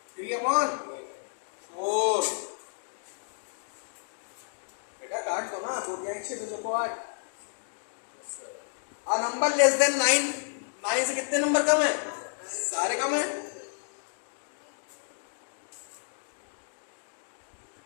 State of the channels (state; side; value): silent; right; digital silence